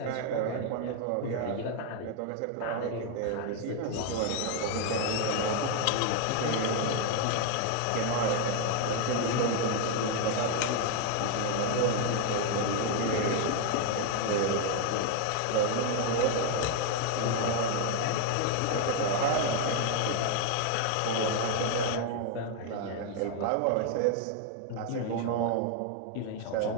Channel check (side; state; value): both; different; correlation 0.01